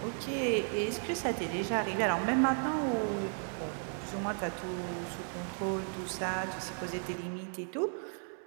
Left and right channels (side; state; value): left; silent; 55 dB below the other